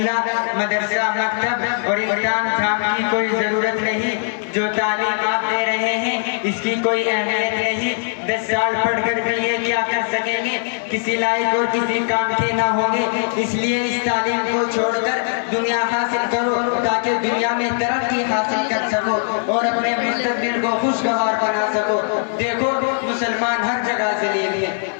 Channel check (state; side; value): silent; right; digital silence